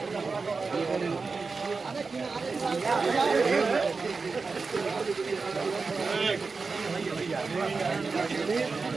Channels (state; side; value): quieter; left; 4.4 dB